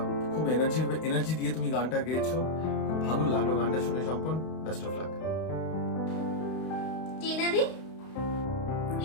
খুব এনার্জি দিয়ে তুমি গানটা গেয়েছো, খুব ভালো লাগলো গানটা শুনে সম্পন। Best of luck. টিনাদি?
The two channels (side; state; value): right; late; 32 ms